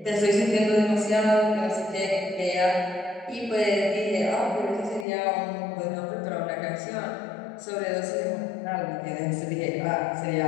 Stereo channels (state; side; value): drops out; right; at 5.1 s